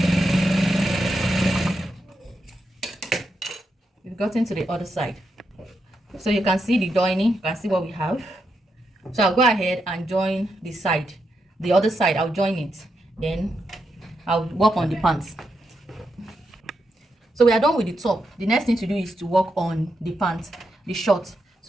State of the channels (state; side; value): normal; both; correlation 0.84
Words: We've gotten to the other side. So you can see the joining, you can see what we have. So I'll go ahead and join the side. The other side, I'll join it. Then I'll work on the pants. So we are done with the top. The next thing to do is to work on the pants, the short.